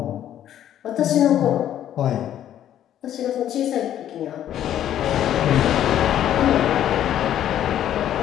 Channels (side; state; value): right; quieter; 11.1 dB